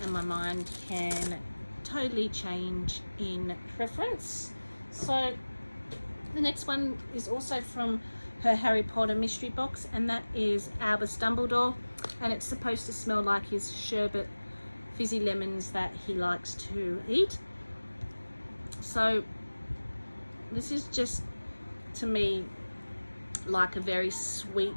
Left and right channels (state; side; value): inverted; both; correlation -1.00